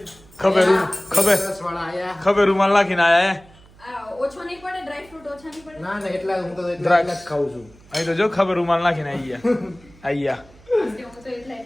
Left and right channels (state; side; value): noise; right; hum, 25 dB below the sound